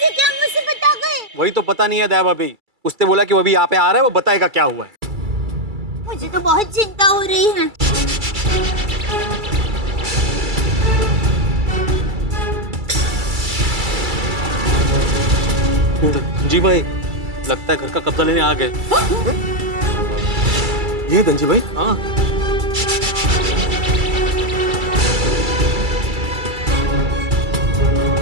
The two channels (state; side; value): late; left; 2.3 ms